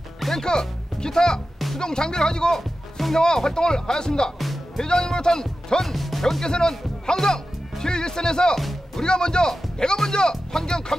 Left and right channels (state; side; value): normal; both; correlation 0.93